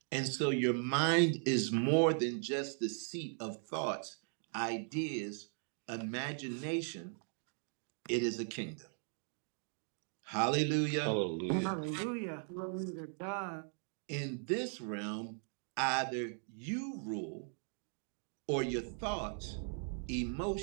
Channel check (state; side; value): silent; left; 52 dB below the other